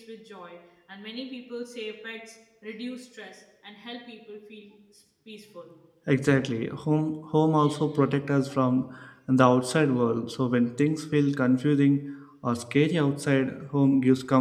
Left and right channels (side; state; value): both; identical; correlation 1.00